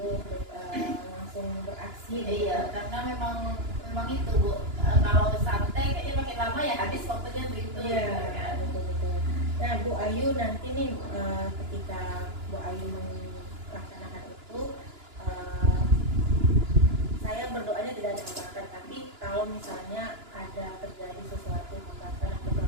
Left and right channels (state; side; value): late; left; 2.9 ms